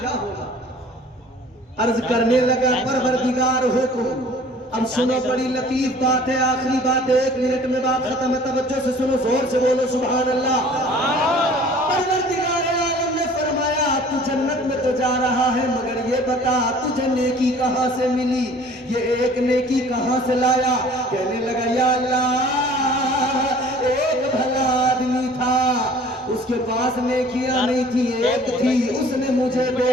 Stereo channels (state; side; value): normal; both; correlation 0.50